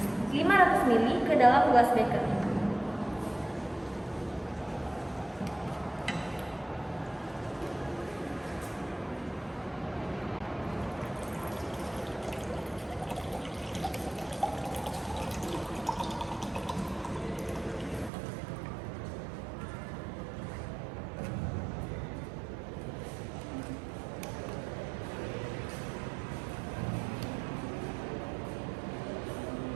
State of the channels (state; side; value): drops out; left; at 18.1 s